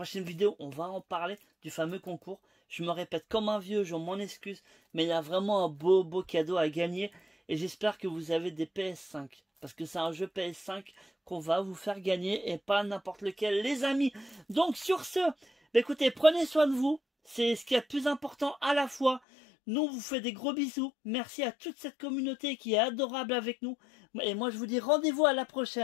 vidéo, on va en parler du fameux concours. Je me répète comme un vieux, je m'en excuse, mais il y a vraiment un beau cadeau à gagner. Et j'espère que vous avez des PS5. Parce que c'est un jeu PS5 qu'on va vous faire gagner. Et pas n'importe lequel, les amis. Donc sur ce, écoutez, prenez soin de vous. C'est ce qui est le plus important à la fois. Nous, on vous fait des gros bisous. Merci à toute cette communauté qui est adorable avec nous. Et moi, je vous dis rendez-vous à la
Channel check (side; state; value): right; drops out; at 19.2 s